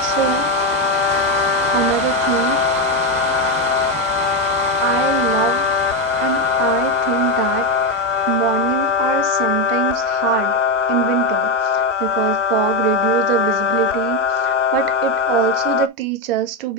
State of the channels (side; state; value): both; normal; correlation 0.09